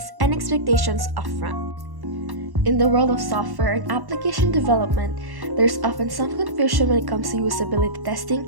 and expectations upfront. In the world of software and application development, there's often some confusion when it comes to usability testing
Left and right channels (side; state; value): left; late; 1.1 ms